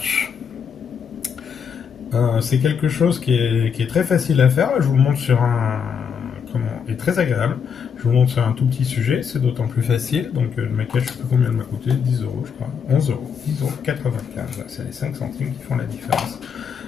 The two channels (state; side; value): quieter; right; 6.9 dB